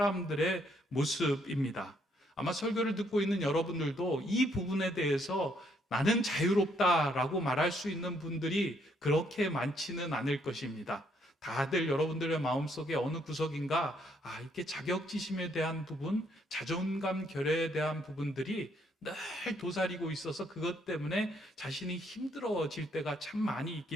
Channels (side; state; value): both; normal; correlation 0.70